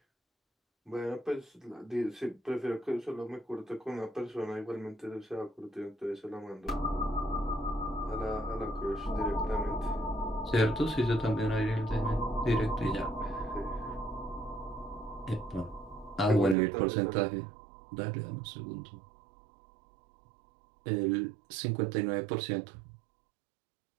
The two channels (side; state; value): left; drops out; at 16.6 s